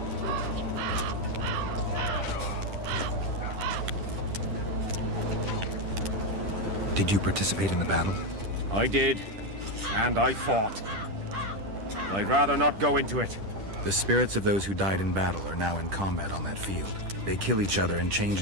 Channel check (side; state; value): left; late; 10 ms